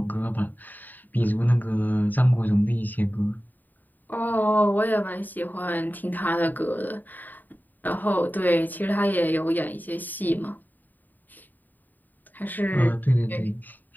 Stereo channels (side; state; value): right; late; 0.087 ms